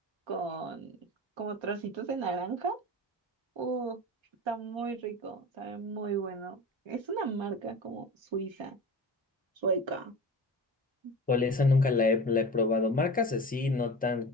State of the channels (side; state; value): both; normal; correlation 0.32